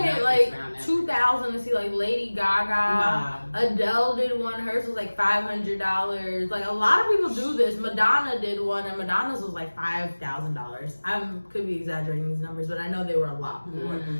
like $2,000 to see like Lady Gaga. Adele did one. Hers was like $500. Like a lot of people do this. Madonna did one, and Madonna's was like $5,000. I could be exaggerating these numbers, but I know they were a lot more.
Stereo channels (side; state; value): both; inverted; correlation -1.00